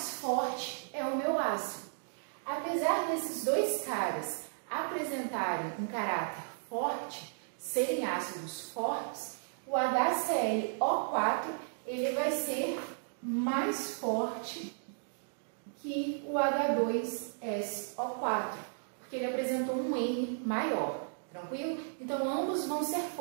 forte é o meu ácido. Apesar desses dois caras apresentarem um caráter forte, serem ácidos fortes, o HClO4 ele vai ser mais forte que o H2SO4, porque ele apresentou um N maior, tranquilo? Então, ambos vão ser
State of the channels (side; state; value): left; silent; digital silence